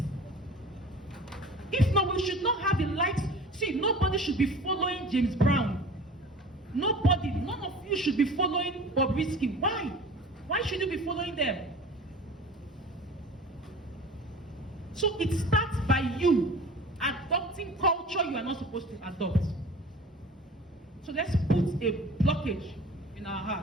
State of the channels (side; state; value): both; normal; correlation 0.41